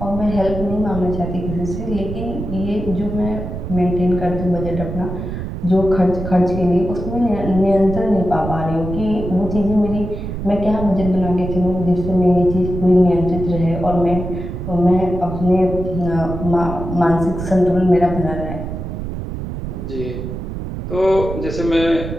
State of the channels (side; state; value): right; noise; rumble, 6 dB below the sound